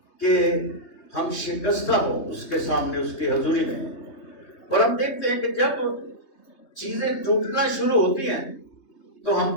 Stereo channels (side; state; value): right; late; 3.2 ms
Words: کہ ہم شکستہ ہو اس کے سامنے، اس کی حضوری میں۔ اور ہم دیکھتے ہیں کہ جب چیزیں ٹوٹنا شروع ہوتی ہیں تو ہم